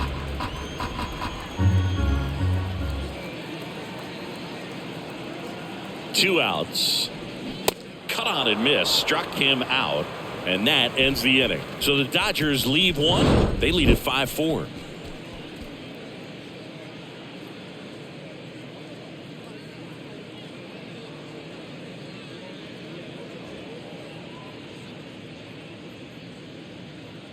Two outs. Cut on and miss. Struck him out. And that ends the inning. So the Dodgers leave one. They lead at 5-4.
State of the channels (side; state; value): both; identical; correlation 1.00